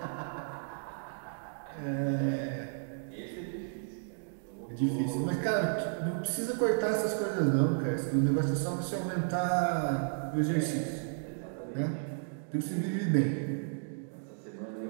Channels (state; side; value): silent; left; digital silence